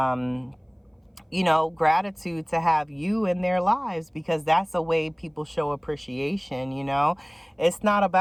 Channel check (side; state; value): both; identical; correlation 1.00